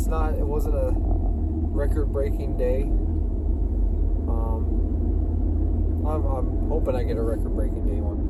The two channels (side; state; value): both; identical; correlation 1.00